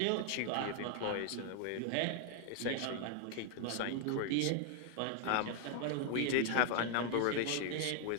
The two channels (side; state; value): both; different; correlation 0.00